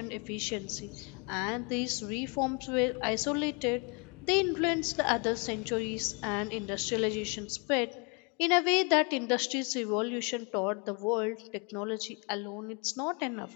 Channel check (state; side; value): quieter; right; 32.8 dB